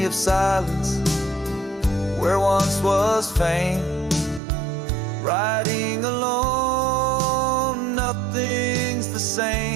of silence where once was fame. Riding alone, nothing's the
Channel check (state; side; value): drops out; left; at 4.4 s